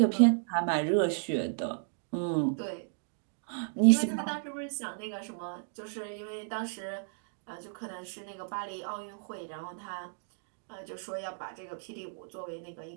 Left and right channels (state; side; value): silent; left; digital silence